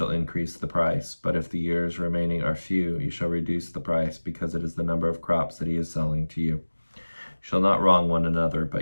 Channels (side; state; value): both; inverted; correlation -1.00